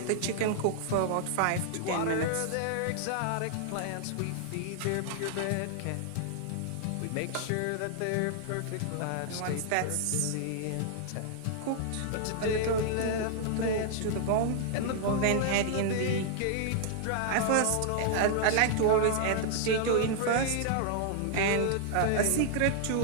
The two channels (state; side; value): different; both; correlation -0.01